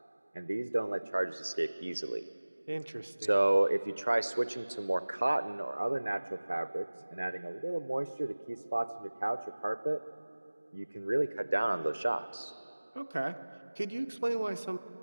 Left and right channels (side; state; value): both; inverted; correlation -1.00